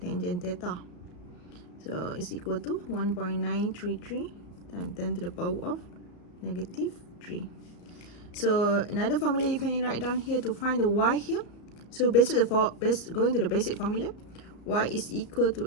theta. So it's equal to 1.933 times 10 to the power of -3. So another formula you can write down here to find the y here. So going to the basic formula, y is equal to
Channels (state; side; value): late; right; 34 ms